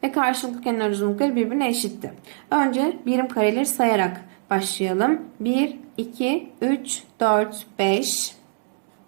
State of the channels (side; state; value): left; silent; digital silence